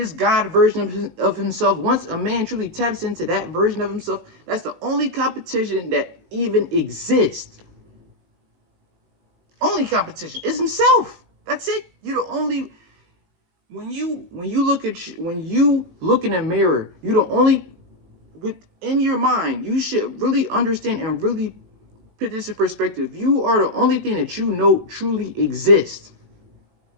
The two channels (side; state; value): left; late; 18 ms